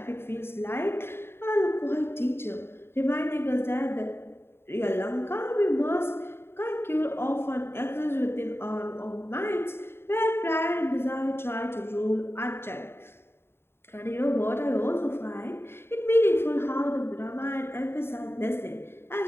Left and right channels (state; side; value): late; right; 0.11 ms